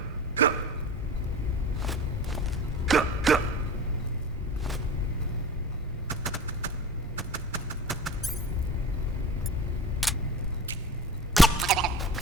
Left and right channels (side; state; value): both; normal; correlation 0.36